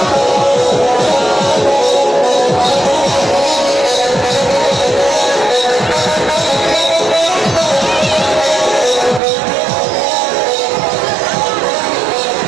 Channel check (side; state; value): left; drops out; at 9.2 s